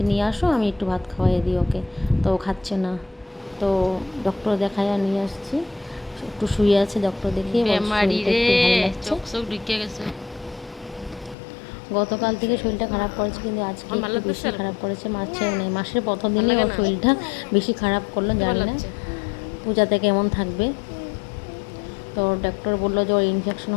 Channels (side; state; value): right; drops out; at 11.4 s